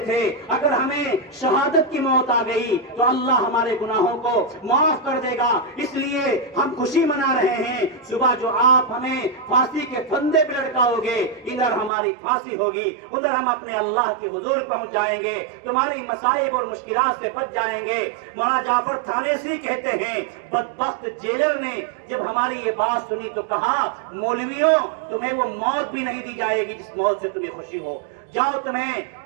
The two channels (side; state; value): left; drops out; at 11.9 s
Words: थे अगर हमें शहादत की मौत आ गई तो अल्लाह हमारे गुनाहों को माफ कर देगा, इसलिए हम खुशी मना रहे हैं। सुबह जो आप हमें फांसी के फंदे पे लटकाओगे, इधर हमारी फांसी होगी, उधर हम अपने अल्लाह के हुजूर पहुंच जाएंगे, तुम्हारी मसाइब और मुश्किलात से बच जाएंगे। मौलाना जाफर थानेसी कहते हैं बदबख्त जेलर ने जब हमारी ये बात सुनी तो कहा मौलवियों तुम्हें वो मौत भी नहीं दी जाएगी जिस मौत से तुम्हें खुशी हो, जाओ तुम्हें